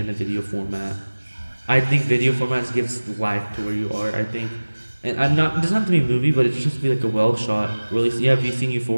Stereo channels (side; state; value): both; inverted; correlation -1.00